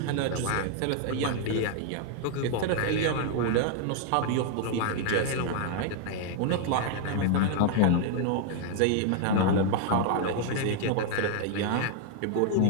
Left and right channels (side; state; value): both; different; correlation 0.00